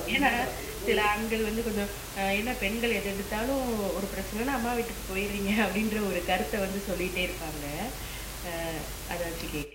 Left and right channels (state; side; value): identical; both; correlation 1.00